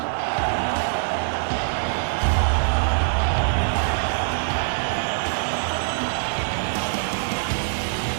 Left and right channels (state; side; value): silent; left; digital silence